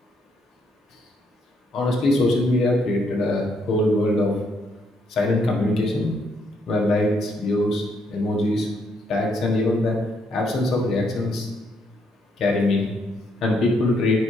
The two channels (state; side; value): normal; both; correlation 0.73